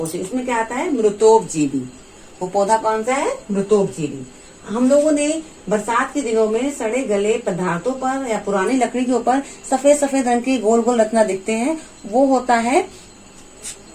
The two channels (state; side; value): identical; both; correlation 1.00